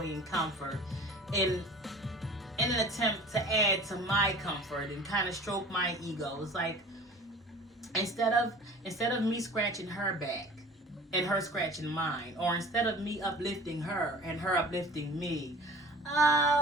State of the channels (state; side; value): normal; both; correlation 0.42